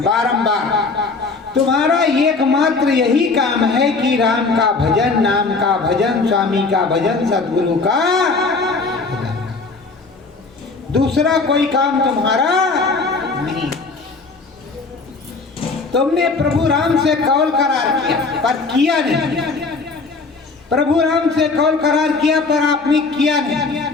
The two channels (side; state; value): right; quieter; 4.1 dB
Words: बारंबार तुम्हारा एकमात्र यही काम है कि राम का भजन, नाम का भजन, स्वामी का भजन, सतगुरु का भजन। दूसरा कोई काम तुम्हारा नहीं। तुमने प्रभु राम से कौल करार किया पर किया नहीं। प्रभु राम से कौल करार किया पर आपने किया नहीं।